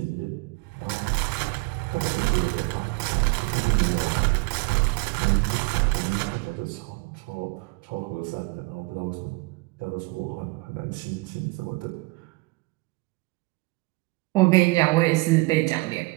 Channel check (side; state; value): left; quieter; 25.2 dB